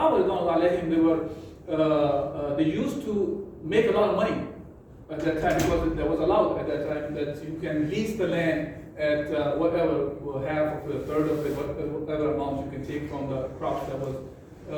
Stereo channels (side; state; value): both; identical; correlation 1.00